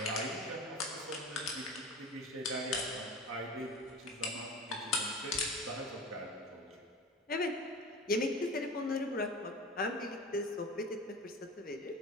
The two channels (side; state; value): both; normal; correlation 0.33